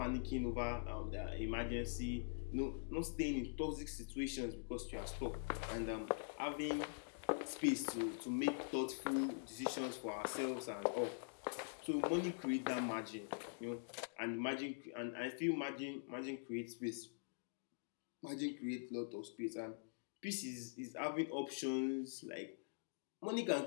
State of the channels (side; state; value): right; silent; digital silence